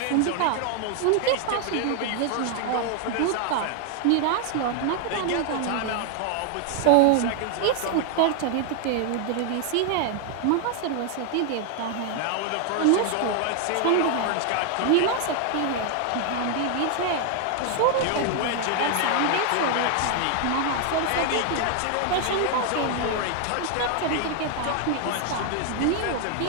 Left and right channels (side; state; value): both; different; correlation 0.00